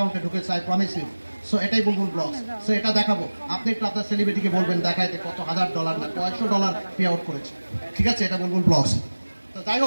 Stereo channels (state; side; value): inverted; both; correlation -1.00